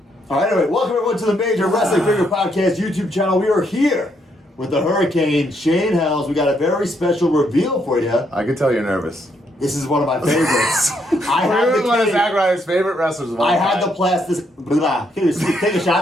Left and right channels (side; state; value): both; normal; correlation 0.74